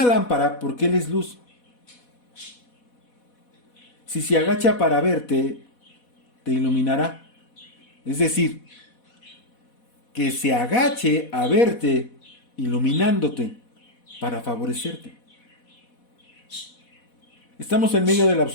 lámpara, porque Él es luz. Si se agacha para verte, te iluminará. Es decir, que se agache a verte, iluminándote, para favorecerte. Estamos en medio de la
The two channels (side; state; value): right; late; 4.1 ms